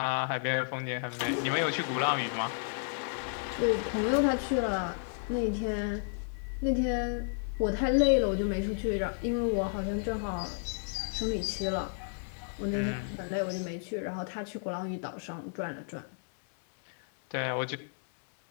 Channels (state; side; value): silent; right; 56 dB below the other